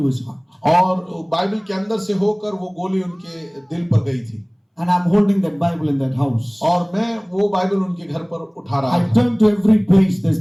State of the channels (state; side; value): identical; both; correlation 1.00